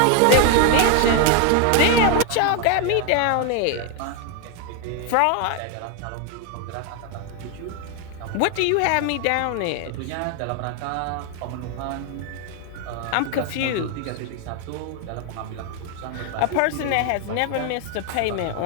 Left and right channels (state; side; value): different; both; correlation 0.01